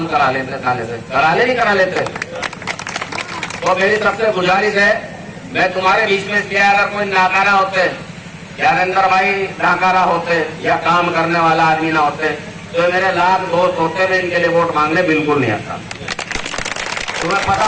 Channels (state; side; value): identical; both; correlation 1.00